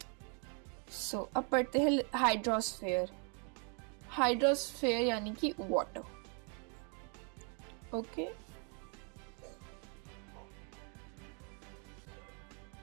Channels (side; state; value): left; quieter; 38.5 dB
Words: सो अब पढ़ते हैं हाइड्रोस्फेयर। हाइड्रोस्फेयर यानी कि water, okay.